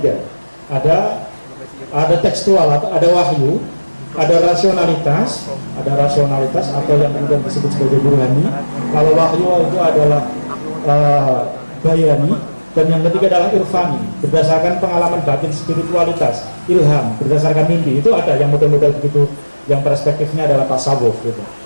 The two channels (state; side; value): inverted; both; correlation -1.00